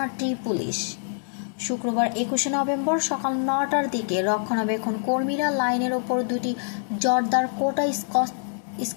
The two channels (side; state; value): right; silent; digital silence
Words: পুলিশ। শুক্রবার ২১ নভেম্বর সকাল ৯টার দিকে রক্ষণাবেক্ষণ কর্মীরা লাইনের ওপর দুটি জর্দার কোটা